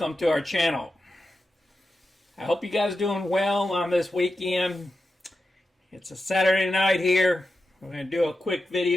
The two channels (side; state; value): both; normal; correlation 0.90